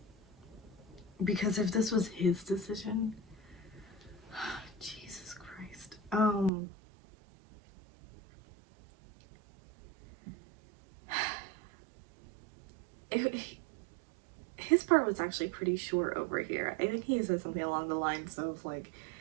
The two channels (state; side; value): drops out; left; at 6.5 s